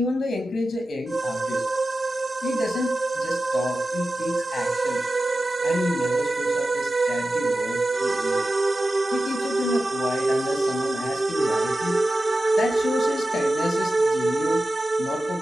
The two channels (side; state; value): both; normal; correlation 0.94